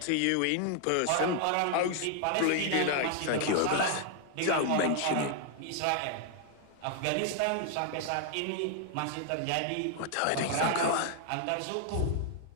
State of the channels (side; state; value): both; different; correlation 0.00